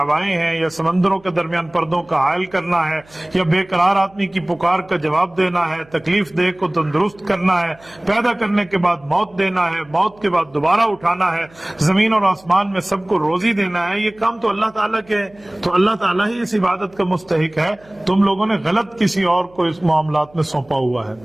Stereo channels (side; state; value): right; noise; hum, 28 dB below the sound